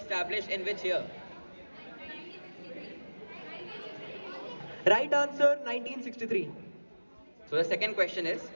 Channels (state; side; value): inverted; both; correlation -1.00